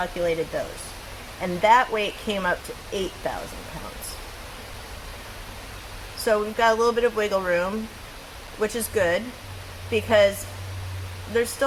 those. And that weight came up to 8,000 pounds. So we've got a little bit of wiggle room, which is good because there's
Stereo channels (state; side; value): identical; both; correlation 1.00